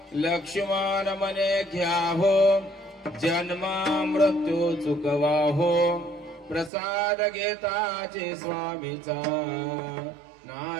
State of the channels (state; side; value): drops out; left; at 6.7 s